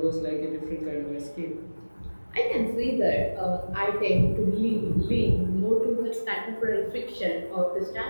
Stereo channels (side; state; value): both; inverted; correlation -1.00